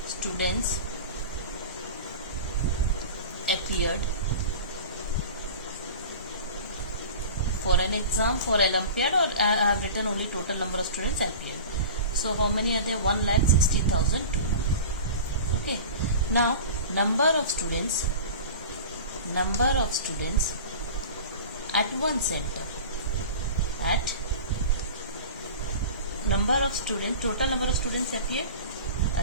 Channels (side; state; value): both; inverted; correlation -0.35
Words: students appeared for an exam, for Olympiad, or I have written only total number of students appeared. So how many are there? 1,60,200. Okay. Now number of students at one center. At number of students, total number of students appeared.